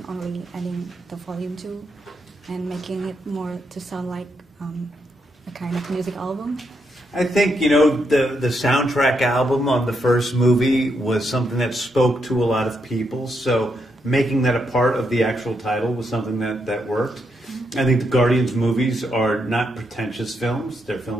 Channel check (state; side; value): normal; both; correlation 0.80